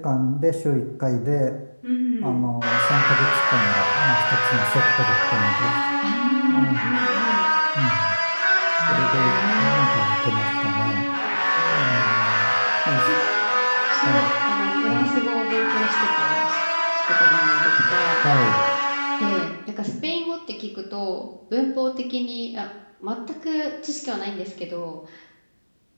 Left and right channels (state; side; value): inverted; both; correlation -1.00